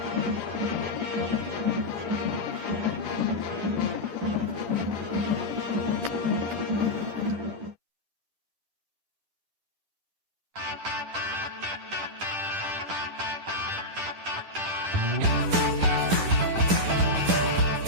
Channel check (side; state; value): left; late; 10 ms